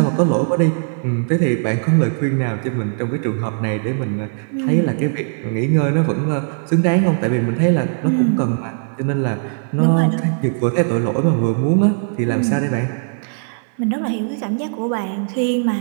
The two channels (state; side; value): silent; left; 66 dB below the other